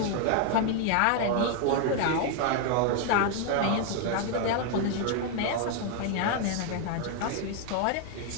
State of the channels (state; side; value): different; both; correlation 0.00